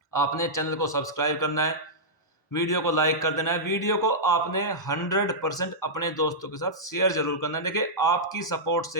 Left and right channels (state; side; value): normal; both; correlation -0.12